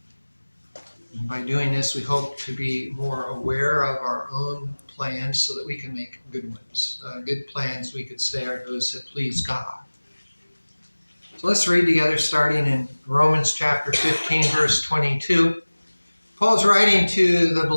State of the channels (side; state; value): both; inverted; correlation -1.00